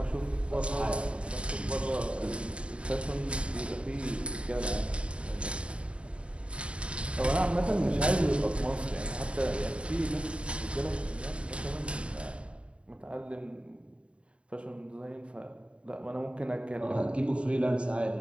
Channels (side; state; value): left; late; 0.058 ms